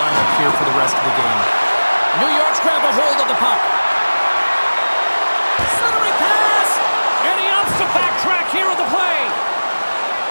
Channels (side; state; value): both; inverted; correlation -1.00